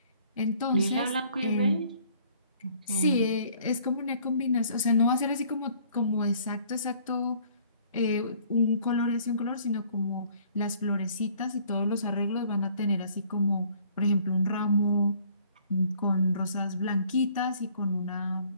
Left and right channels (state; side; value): inverted; both; correlation -0.58